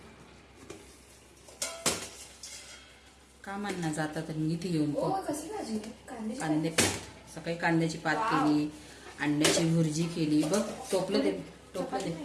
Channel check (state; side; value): identical; both; correlation 1.00